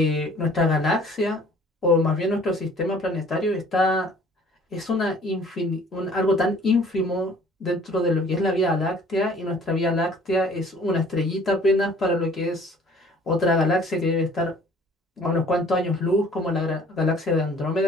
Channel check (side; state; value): both; normal; correlation 0.53